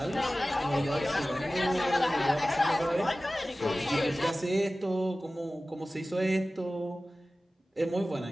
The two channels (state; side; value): normal; both; correlation 0.96